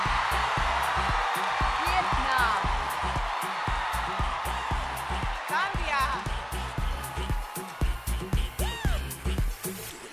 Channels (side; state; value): both; identical; correlation 1.00